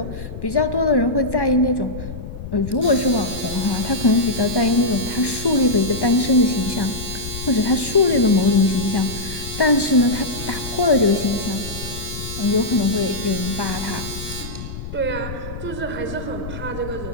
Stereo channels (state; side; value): noise; left; rumble, 10 dB below the sound